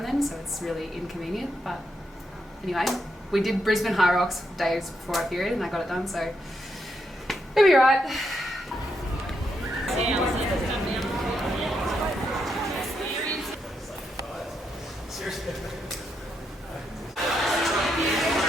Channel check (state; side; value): normal; both; correlation 0.81